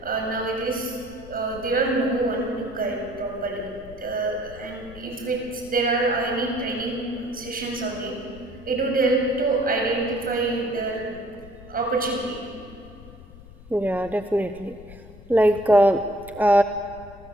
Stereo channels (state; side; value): noise; left; rumble, 19 dB below the sound